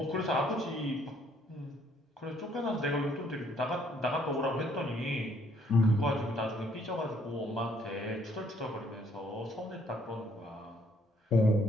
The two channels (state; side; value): normal; both; correlation 0.66